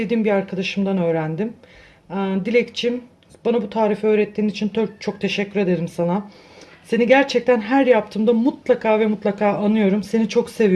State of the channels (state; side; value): identical; both; correlation 1.00